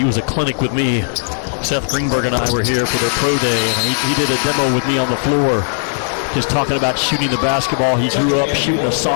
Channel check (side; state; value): right; silent; digital silence